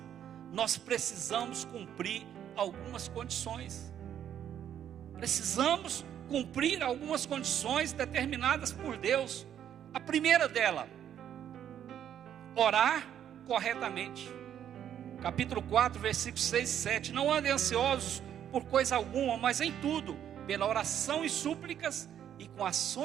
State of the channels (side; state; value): left; quieter; 9.9 dB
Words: nós precisamos cumprir algumas condições. Precisamos cumprir algumas condições determinadas por Deus. A primeira dela, orar corretamente. Capítulo 4, versículos 6 e 7. Não andem ansiosos por coisa alguma, mas em tudo, pela oração e súplicas e com